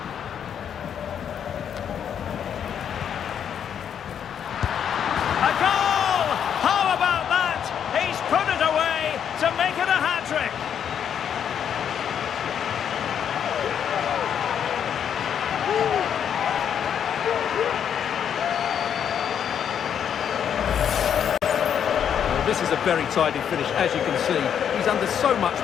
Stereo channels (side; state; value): right; quieter; 8.5 dB